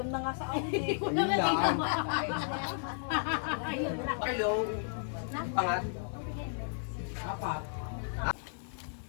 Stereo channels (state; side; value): silent; right; digital silence